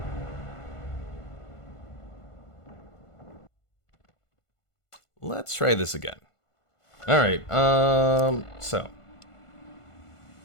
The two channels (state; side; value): late; right; 1.5 ms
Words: Let's try this again. All right, so.